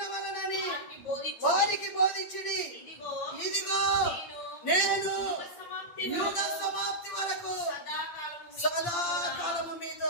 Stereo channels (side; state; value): right; late; 8.7 ms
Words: వారికి బోధించుడి. ఇదిగో నేను యుగ సమాప్తి వరకు సదాకాలము మీతో